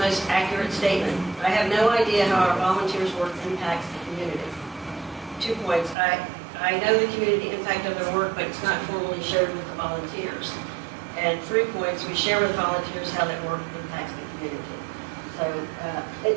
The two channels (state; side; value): drops out; left; at 6.0 s